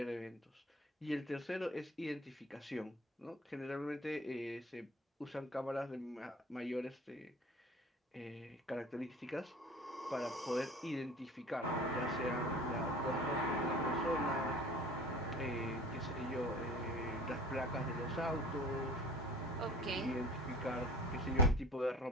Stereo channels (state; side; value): normal; both; correlation 0.44